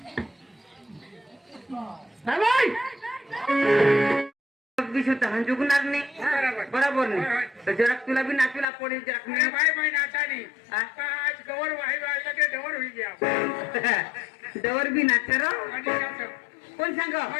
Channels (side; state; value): right; drops out; at 8.7 s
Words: जुगणार नाही बरोबर नाही तर जरा तुला बी नाचूला पडेल जरा भाई नाचानी आज गवर वाही वाजला की डवर होई गया डवर बी नाचते रो कोण सांग